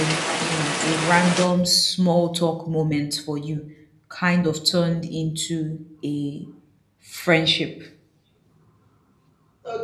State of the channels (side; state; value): both; identical; correlation 1.00